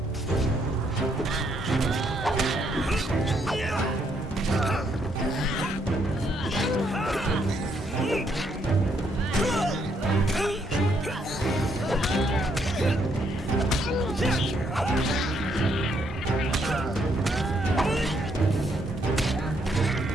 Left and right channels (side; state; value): both; normal; correlation 0.73